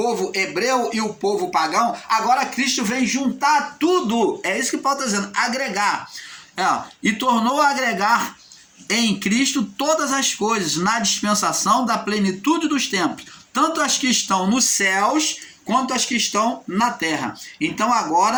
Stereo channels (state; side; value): identical; both; correlation 1.00